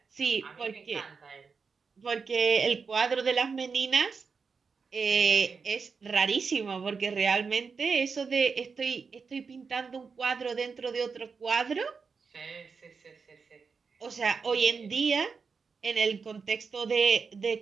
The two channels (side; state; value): left; quieter; 5.2 dB